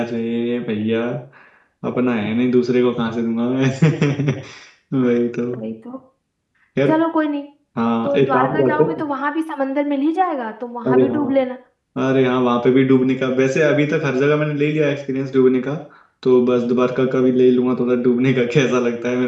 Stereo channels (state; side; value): identical; both; correlation 1.00